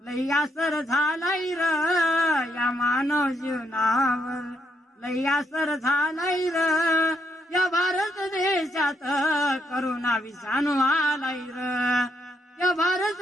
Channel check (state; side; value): normal; both; correlation 0.77